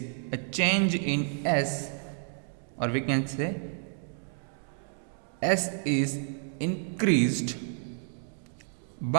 a change in S, or we can say S is increased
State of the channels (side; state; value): left; silent; 58 dB below the other